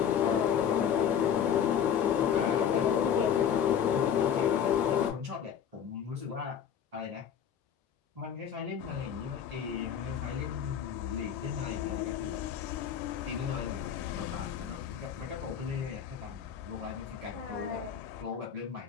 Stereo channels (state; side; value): quieter; right; 8.5 dB